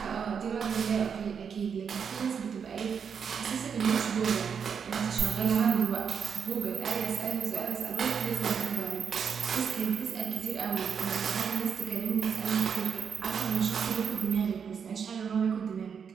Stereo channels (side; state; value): left; quieter; 6.8 dB